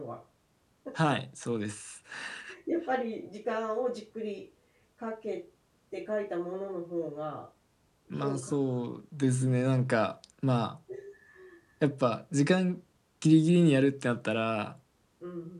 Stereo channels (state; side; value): identical; both; correlation 1.00